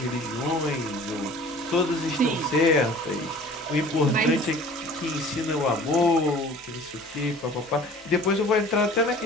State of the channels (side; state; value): both; normal; correlation 0.47